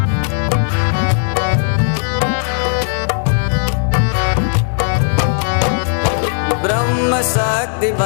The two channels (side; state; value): right; silent; 59 dB below the other